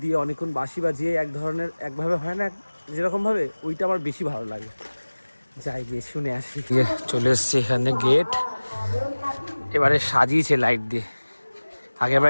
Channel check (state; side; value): inverted; both; correlation -1.00